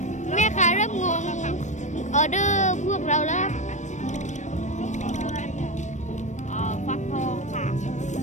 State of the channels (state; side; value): late; right; 0.35 ms